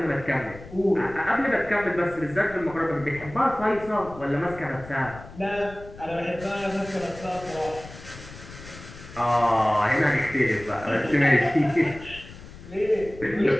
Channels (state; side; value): noise; left; rumble, 16 dB below the sound